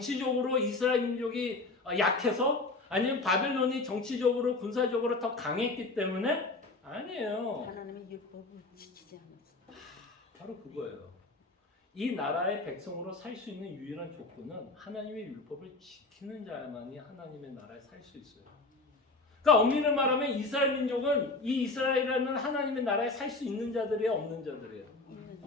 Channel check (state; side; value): quieter; right; 3.3 dB